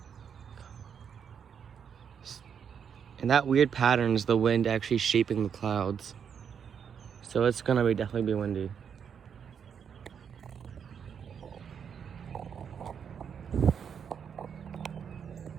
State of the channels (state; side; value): quieter; left; 7.4 dB